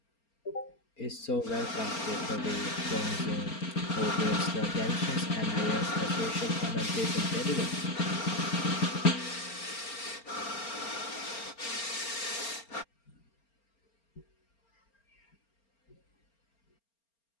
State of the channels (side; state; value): right; late; 4.3 ms